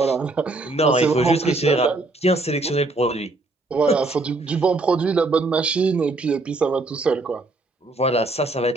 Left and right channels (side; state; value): left; quieter; 3.1 dB